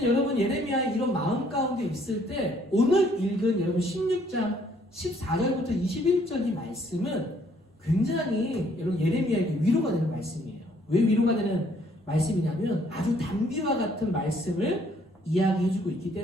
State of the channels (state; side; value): normal; both; correlation 0.64